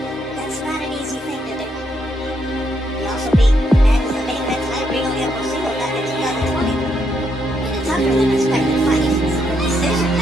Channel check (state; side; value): normal; both; correlation 0.76